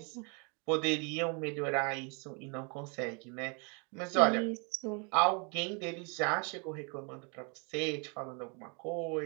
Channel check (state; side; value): quieter; left; 34.3 dB